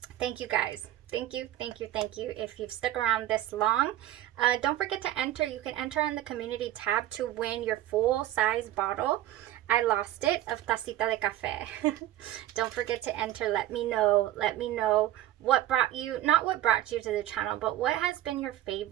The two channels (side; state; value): left; quieter; 13.7 dB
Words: Thank you, guys. Thank you, thank you, thank you. If you've stuck around this long, don't forget to enter. You can enter on the community tab to win your full-size bottle. I lost it, of Tacita de Café. Don't forget to enter. Let me know what brought you, not what brought you to the channel, but what has been your